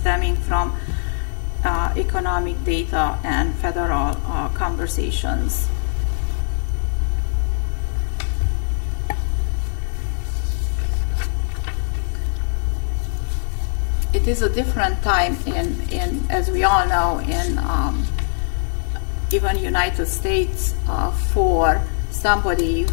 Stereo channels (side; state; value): right; silent; 58 dB below the other